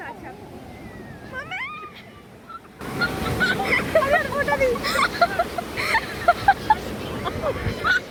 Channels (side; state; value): both; identical; correlation 1.00